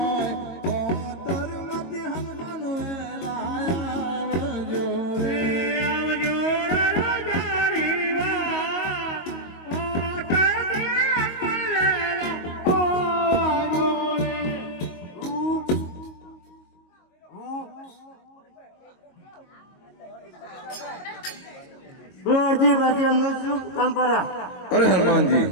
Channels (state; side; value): late; right; 22 ms